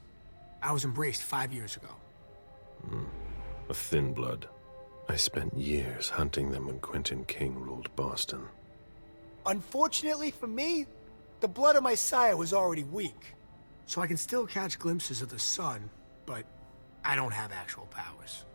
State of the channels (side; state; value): both; inverted; correlation -1.00